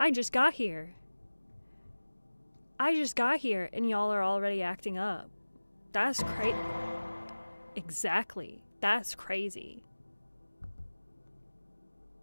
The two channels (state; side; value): inverted; both; correlation -1.00